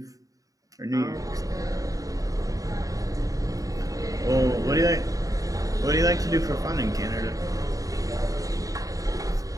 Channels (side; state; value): left; late; 0.17 ms